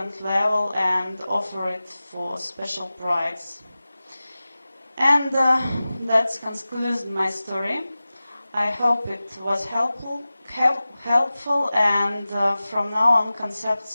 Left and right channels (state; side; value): inverted; both; correlation -0.96